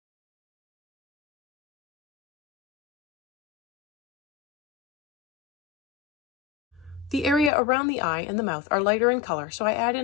The area around the eye and the mouth are lighter in color, so I add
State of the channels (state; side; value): drops out; right; at 7.5 s